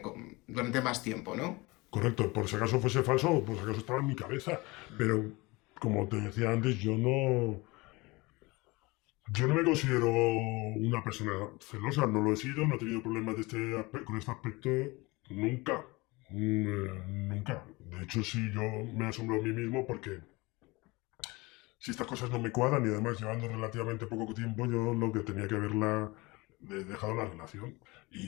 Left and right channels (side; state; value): right; quieter; 23.7 dB